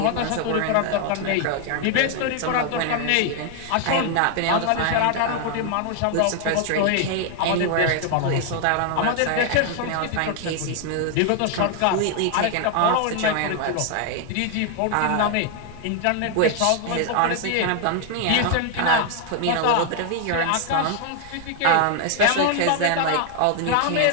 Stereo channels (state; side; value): different; both; correlation 0.00